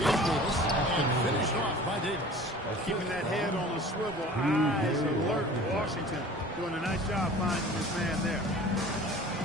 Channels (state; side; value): normal; both; correlation 0.44